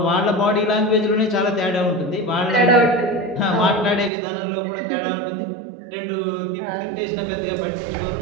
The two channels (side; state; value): left; drops out; at 4.1 s